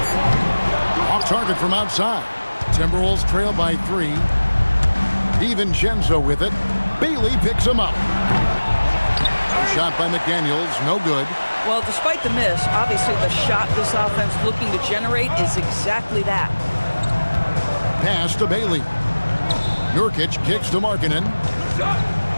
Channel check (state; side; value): inverted; both; correlation -1.00